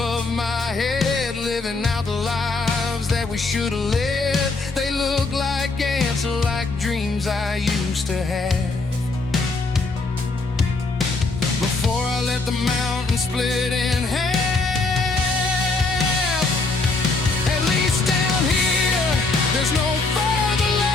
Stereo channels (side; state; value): right; quieter; 3.6 dB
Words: my head, living out the lives that we should have led. They look like ants, like dreams I used to have. Before I let the mountain split in half. At least down here, there's no further